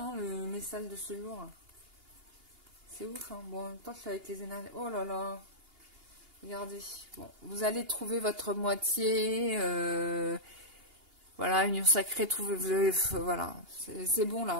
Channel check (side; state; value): left; late; 2.8 ms